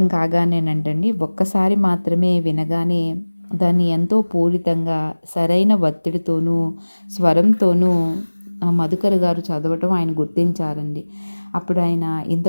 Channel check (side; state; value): both; inverted; correlation -1.00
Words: కాగానేనంటండి, ఒక్కసారి మాత్రమే వినగానే దాన్ని ఎంతో పూరితంగా సరైన ఒత్తిడితోనూ, స్వరంతోనూ మధుకర్ గారు చదవటం ఆయన గుర్తించారండి. అప్పుడు ఆయన